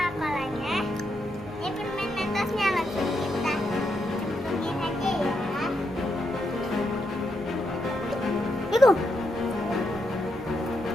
ini permen Mentosnya langsung kita cemplungin aja ya. Itu.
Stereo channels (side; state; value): both; normal; correlation 0.81